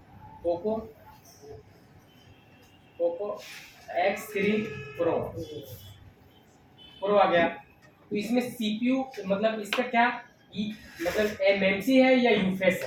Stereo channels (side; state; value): both; identical; correlation 1.00